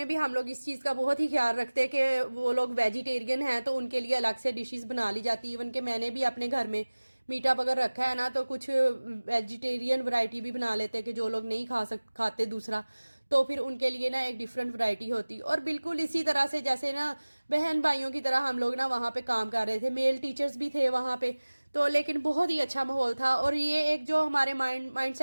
भी हम लोग इस चीज़ का बहुत ही ख्याल रखते हैं कि वो लोग वेजिटेरियन हैं तो उनके लिए अलग से डिशेस बना ली जाती। इवन कि मैंने भी अपने घर में मीटअप अगर रखा है ना तो कुछ वेजिटेरियन वैरायटी भी बना लेते हैं कि जो लोग नहीं खाते दूसरा, तो फिर उनके लिए ना एक डिफरेंट वैरायटी होती। और बिल्कुल इसी तरह से जैसे ना बहन भाइयों की तरह हम लोग ना वहाँ पे काम कर रहे थे। मेल टीचर्स भी थे वहाँ पे। तो लेकिन बहुत ही अच्छा माहौल था। और ये एक जो हमारे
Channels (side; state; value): both; inverted; correlation -1.00